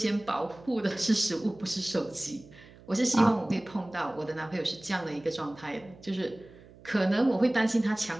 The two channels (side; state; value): right; noise; hum, 22 dB below the sound